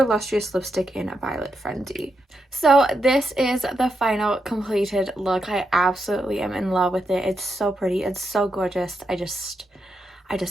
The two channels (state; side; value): normal; both; correlation 0.84